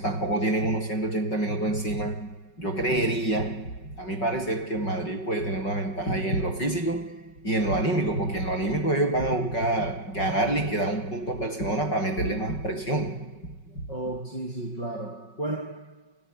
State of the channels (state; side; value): late; right; 5.3 ms